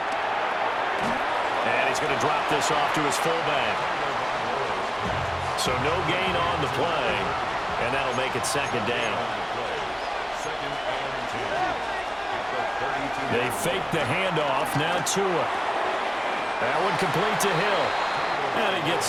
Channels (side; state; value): both; identical; correlation 1.00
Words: And he's going to drop this off to his fullback. So no gain on the play. And that'll make it second down. They fake the handoff. Now Tua. That one complete to Hill. And he